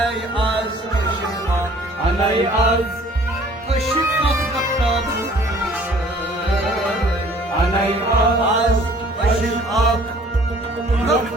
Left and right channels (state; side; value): normal; both; correlation 0.54